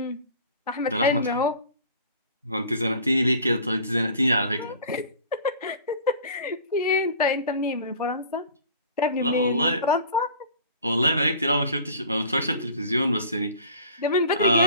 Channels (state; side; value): inverted; both; correlation -0.44